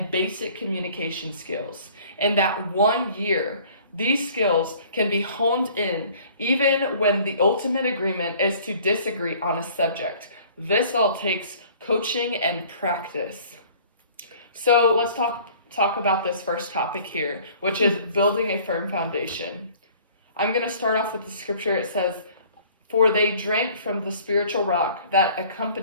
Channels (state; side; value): inverted; both; correlation -0.52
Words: basic communication skills. In that 1 year, these skills can be honed in even when the ultimate agreement is to disagree on a subject. This all takes coaching and practice." So let's talk about this first topic here, which is building a firm foundation. I'm going to start off with the scripture. It says, "For they drank from the spiritual rock that